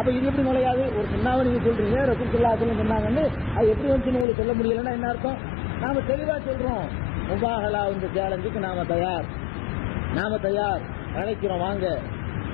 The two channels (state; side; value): drops out; right; at 4.2 s